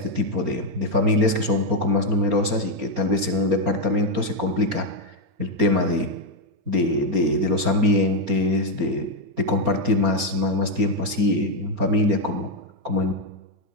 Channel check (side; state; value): left; late; 4.3 ms